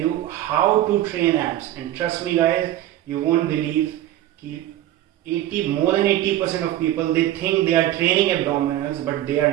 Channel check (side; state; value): left; quieter; 13.6 dB